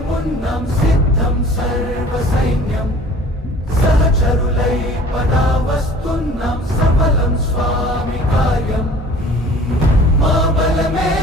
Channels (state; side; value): normal; both; correlation 0.48